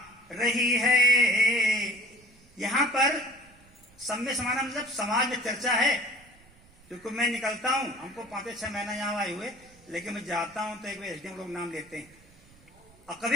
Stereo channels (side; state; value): right; noise; rumble, 27 dB below the sound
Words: रही है। यहाँ पर सब में समाना मतलब समाज में चर्चा है। क्योंकि मैं निकलता हूँ, हमको 5-6 महीना यहाँ आए हुए, लेकिन मैं जाता हूँ तो एक बार एसडीएम लोग नाम लेते हैं। और